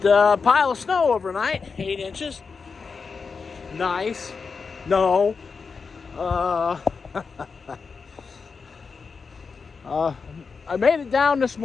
a pile of snow overnight, 8 inches. Nice. No. I made it down this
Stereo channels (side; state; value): right; quieter; 5.1 dB